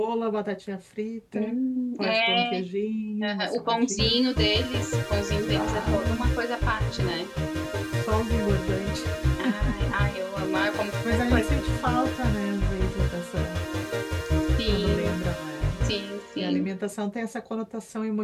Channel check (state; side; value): identical; both; correlation 1.00